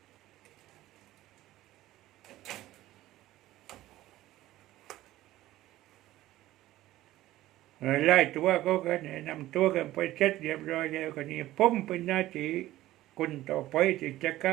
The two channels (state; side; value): quieter; left; 15.6 dB